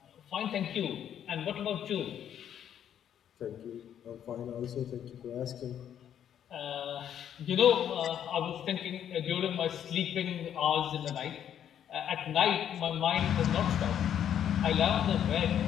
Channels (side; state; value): right; quieter; 9.7 dB